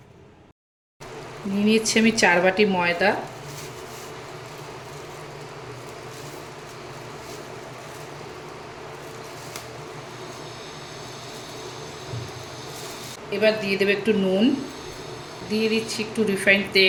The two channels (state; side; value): identical; both; correlation 1.00